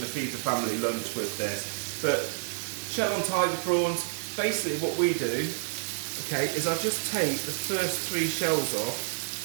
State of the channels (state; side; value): silent; left; 59 dB below the other